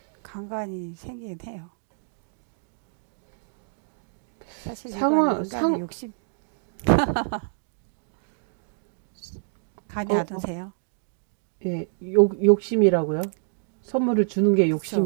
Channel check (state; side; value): silent; left; digital silence